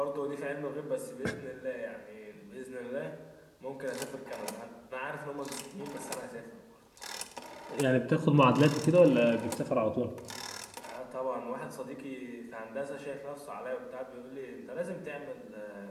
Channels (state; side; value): identical; both; correlation 1.00